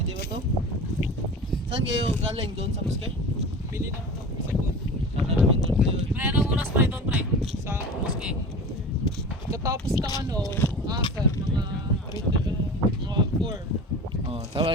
ba to? Saan kayo galing doon sa Muskay? Pili na ako sa food. Sana namin doon kayo. Pre, anong oras pa ito, pre? Sa Muske. Katapos ng ano, sir, mga 4. Oh, tama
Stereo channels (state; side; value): normal; both; correlation 0.34